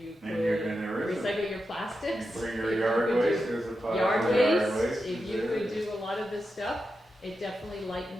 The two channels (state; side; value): normal; both; correlation 0.89